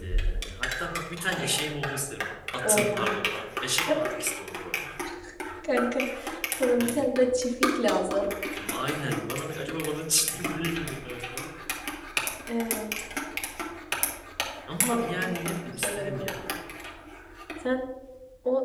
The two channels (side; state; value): both; identical; correlation 1.00